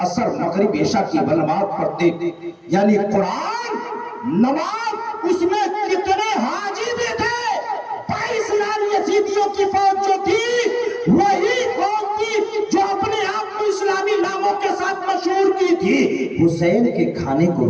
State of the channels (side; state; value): both; identical; correlation 1.00